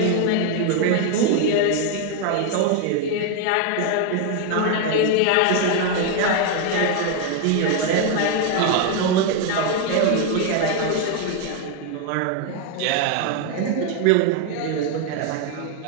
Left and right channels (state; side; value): different; both; correlation 0.01